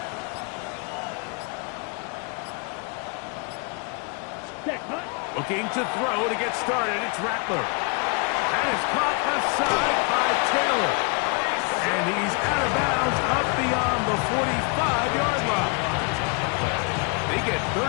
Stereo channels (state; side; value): quieter; right; 34.6 dB